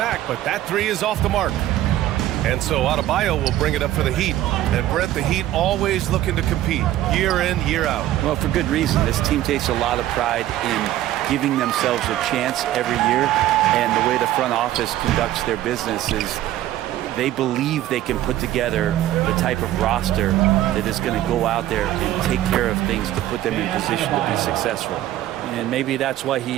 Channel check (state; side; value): quieter; left; 13.7 dB